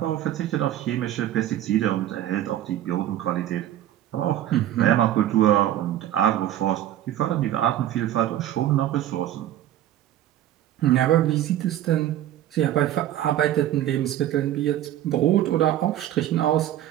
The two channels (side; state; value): left; quieter; 12.5 dB